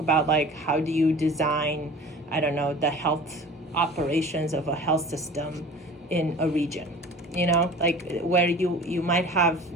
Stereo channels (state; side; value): normal; both; correlation 0.42